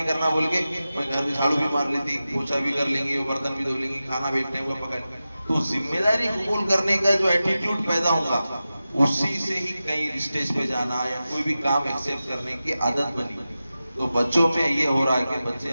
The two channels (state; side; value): inverted; both; correlation -0.94